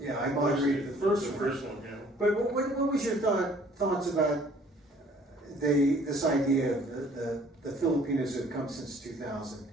I moderated the first The one. first one, yeah. But what was your thoughts about this idea of the Filipinos who have come since 2000,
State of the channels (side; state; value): both; normal; correlation 0.57